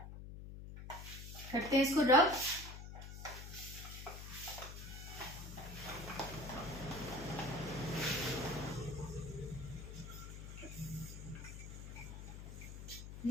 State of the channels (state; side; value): noise; left; hum, 10 dB below the sound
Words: करते हैं इसको रब।